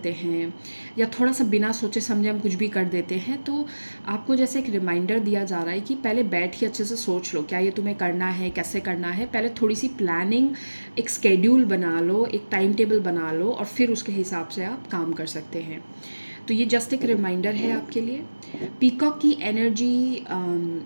हैं या थोड़ा सा बिना सोचे समझे हम कुछ भी कर देते हैं. तो आपको जैसे एक रिमाइंडर दिया जा रहा है कि पहले बैठ के अच्छे से सोच लो क्या ये तुम्हें करना है, कैसे करना है. पहले थोड़ी सी प्लानिंग, एक स्केड्यूल बना लो, एक टाइम टेबल बना लो और फिर उसके हिसाब से आप काम कर सकते हैं. तो ये जस्ट एक रिमाइंडर है आपके लिए. पीकॉक की एनर्जी,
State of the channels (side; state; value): both; inverted; correlation -1.00